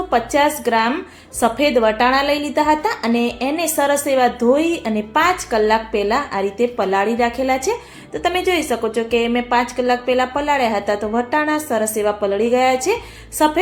ગ્રામ સફેદ વટાણા લઈ લીધા હતા અને એને સરસ એવા ધોઈ અને 5 કલાક પહેલાં આ રીતે પલાળી રાખેલા છે. તો તમે જોઈ શકો છો કે મેં 5 કલાક પહેલાં પલાળ્યા હતા તો વટાણા સરસ એવા પલળી ગયા છે.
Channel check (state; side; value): identical; both; correlation 1.00